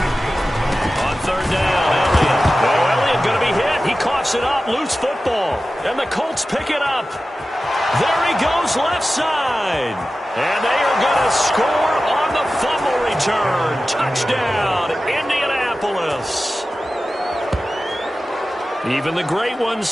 It up, loose football, and the Colts pick it up. There he goes, left side. And they are going to score on the fumble return. Touchdown, Indianapolis. Even the great ones,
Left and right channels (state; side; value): normal; both; correlation 0.95